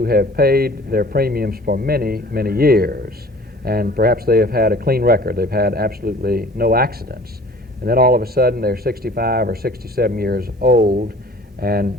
have paid their premiums for many, many years, and perhaps they have had a clean record. They've had absolutely no accidents. And then all of a sudden they're 65 or 67 years old and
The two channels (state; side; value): normal; both; correlation 0.48